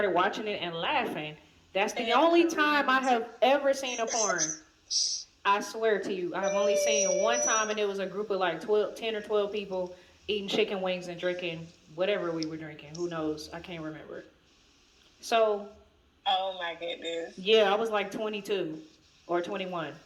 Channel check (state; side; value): identical; both; correlation 1.00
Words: watching it and laughing. That's the only time I have ever seen a porn. I swear to you, I have only seen one time, and it was a group of like 10 or 12 people eating chicken wings and drinking whatever we were drinking. Who knows? I can't remember. So. Oh my goodness. Yeah, I was like 22 or 21.